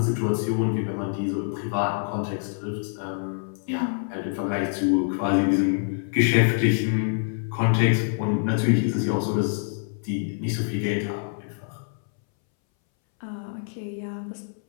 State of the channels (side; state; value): right; silent; 61 dB below the other